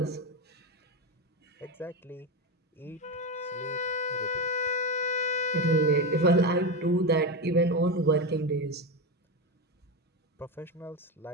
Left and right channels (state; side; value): normal; both; correlation 0.15